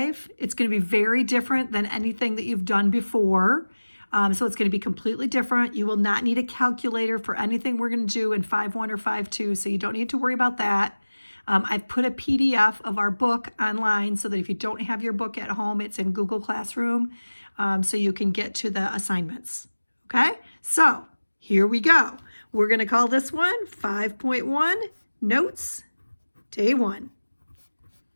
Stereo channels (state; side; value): inverted; both; correlation -1.00